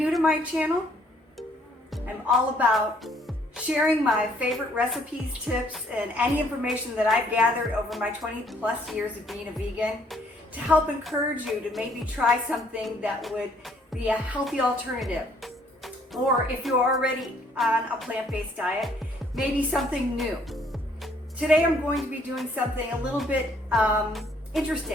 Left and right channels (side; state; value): both; normal; correlation 0.64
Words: to my channel, I'm all about sharing my favorite recipes, tips, and any information that I've gathered over my 20 plus years of being a vegan to help encourage you to maybe try something that would be a healthy alternative. Or if you're already on a plant-based diet, maybe something new. Today I'm going to be doing something a little bit